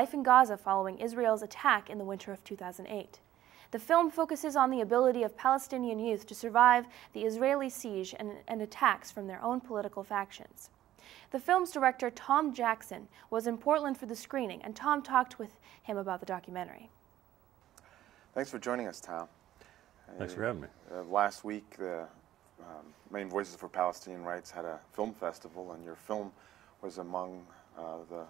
in Gaza following Israel's attack in the winter of 2008. The film focuses on the ability of Palestinian youth to survive the Israeli siege and attacks from their own political factions. The film's director, Tom Jackson, was in Portland for the screening, and Tom talked with him about the documentary. Thanks for joining us, Tom. Thanks for having me. Last week, the Maine Voices for Palestinian Rights had a film festival, and your film was among the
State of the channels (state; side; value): quieter; left; 13.3 dB